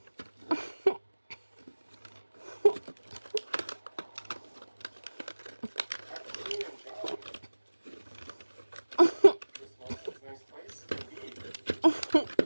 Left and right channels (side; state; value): both; inverted; correlation -1.00